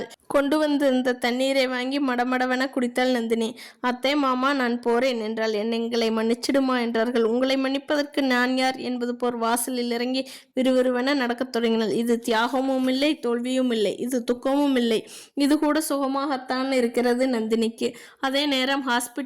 கொண்டு வந்திருந்த தண்ணீரை வாங்கி மடமடவென குடித்தாள் நந்தினி. அத்தை மாமா நான் போறேன் என்றாள். எங்களை மன்னிச்சிடுமா என்றார்கள். உங்களை மன்னிப்பதற்கு நான் யார் என்பது போர் வாசலில் இறங்கி விறுவிறுவென நடக்கத் தொடங்கினாள். இது தியாகமும் இல்லை, தோல்வியும் இல்லை, இது துக்கமும் இல்லை, இது கூட சுகமாகத்தான் இருக்கிறது நந்தினிக்கு. அதே நேரம்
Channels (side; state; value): both; identical; correlation 1.00